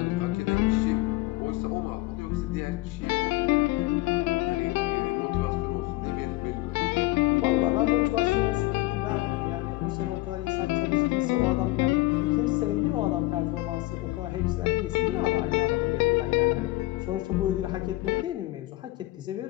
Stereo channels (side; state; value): right; quieter; 19.1 dB